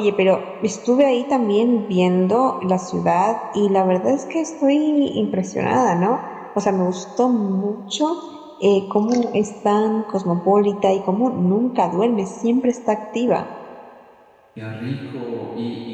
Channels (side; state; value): both; identical; correlation 1.00